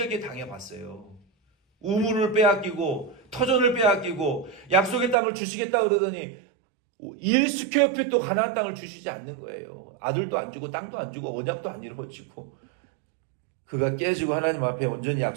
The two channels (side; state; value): left; drops out; at 5.2 s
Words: 당해봤어요. 우물을 빼앗기고 터전을 빼앗기고 약속의 땅을 주시겠다 그러더니 1스퀘어핏도 가나안 땅을 주시지 않는 거예요. 아들도 안 주고 땅도 안 주고 언약도 안 이루어지고, 그가 깨지고 하나님 앞에 온전히